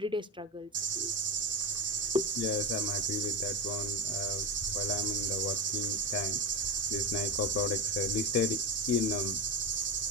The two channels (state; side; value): normal; both; correlation 0.17